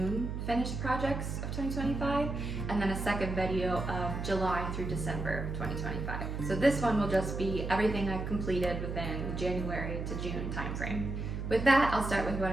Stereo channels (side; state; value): right; noise; hum, 4 dB below the sound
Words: finished projects of 2025, and then a second video of July through December 2025. So this one will just be everything I've completed within the January to June timeframe. With that, I'll start with what